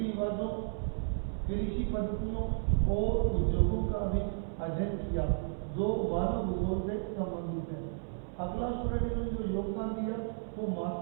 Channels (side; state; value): left; silent; 56 dB below the other